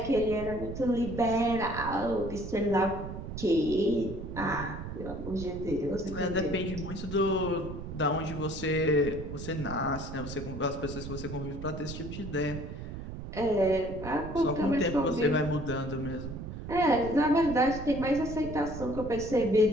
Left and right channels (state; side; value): noise; right; rumble, 8 dB below the sound